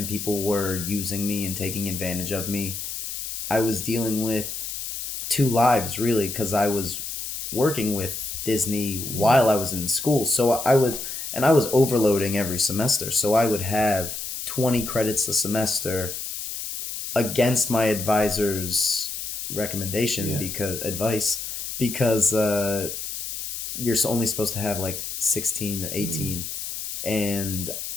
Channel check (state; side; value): noise; left; hiss, 6 dB below the sound